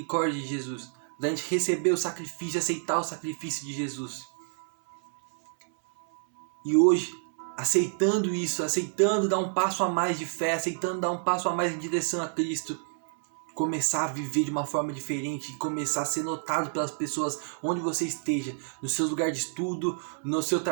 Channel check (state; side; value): silent; left; 59 dB below the other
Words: de Jesus, da gente receber o sacrifício, aceitar o sacrifício de Jesus. E hoje, aceitando isso, aceitando dar um passo a mais de fé, aceitando dar um passo a mais em direção a Cristo, começar a viver de uma forma diferente, começar a ser notado pelas pessoas onde você esteja, no seu lugar de estudo, no seu